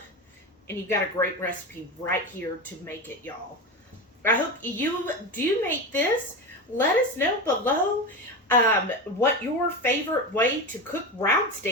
and you've got a great recipe right here to make it, y'all. I hope you do make this. Let us know below what your favorite way to cook round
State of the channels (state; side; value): normal; both; correlation 0.21